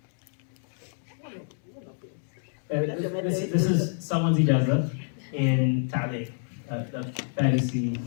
This is someone's ijazah in Ta'liq, the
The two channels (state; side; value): silent; right; 59 dB below the other